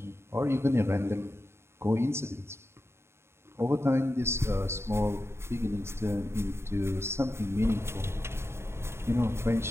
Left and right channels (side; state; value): left; late; 0.12 ms